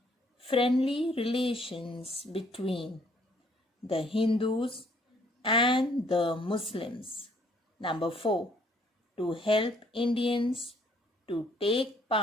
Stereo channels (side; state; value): both; normal; correlation 0.64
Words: friendly relations between the Hindus and the Muslims. Number 4. To help Indians to take